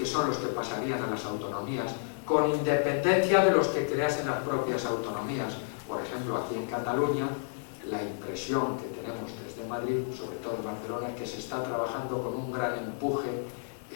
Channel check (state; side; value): silent; right; digital silence